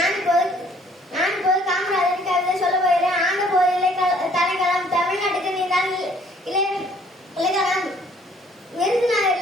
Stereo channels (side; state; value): both; normal; correlation 0.59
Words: இப்போது காமராஜரின் கவிதை சொல்ல போகிறேன். ஆண்ட போதிலே தலைக்களம் தமிழ்நாட்டுக்கு நீதான் இலக்கணம்.